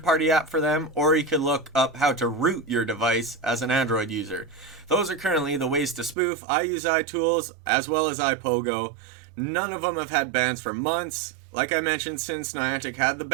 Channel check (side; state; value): left; drops out; at 6.2 s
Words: app for them, or you can look up how to root your device as an Android user. Those are currently the ways to spoof. I use iTools as well as iPOGO. None of them have had bans for months. Like I mentioned, since Niantic had the